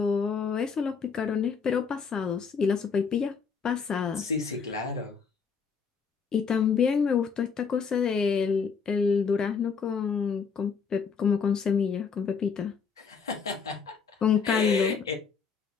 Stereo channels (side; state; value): right; quieter; 5.9 dB